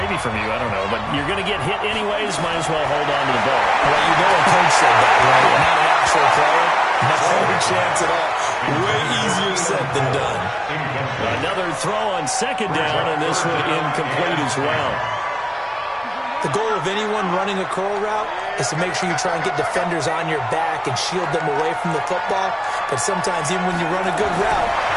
from you, I don't know, but you're going to get hit anyways, might as well hold on to the ball. Well, you know a coach said that, right? Not an actual player. No chance at all. Way easier said than done. Another throw on second down, and this one incomplete as well. The goal of anyone running a curl route is to make sure you try and get defenders on your back and shield them away from the football. But sometimes even when you run a good route,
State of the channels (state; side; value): identical; both; correlation 1.00